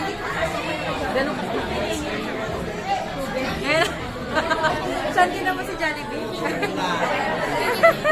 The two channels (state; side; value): identical; both; correlation 1.00